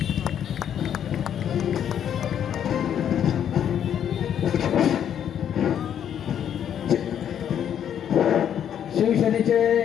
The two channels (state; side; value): quieter; right; 9.3 dB